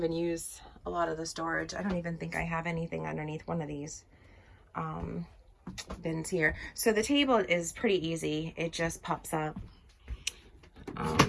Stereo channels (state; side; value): identical; both; correlation 1.00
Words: use a lot of the storage. I don't even think I have anything underneath one of these bins here. So the table is pretty easy. It just pops up.